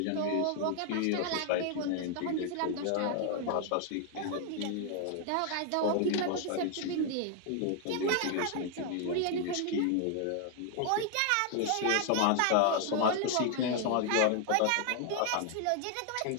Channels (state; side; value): different; both; correlation 0.00